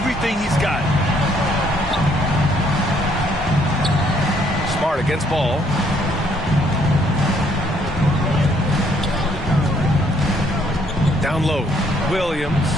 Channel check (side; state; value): both; normal; correlation 0.67